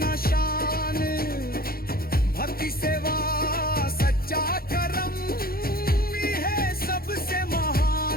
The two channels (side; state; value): right; late; 0.43 ms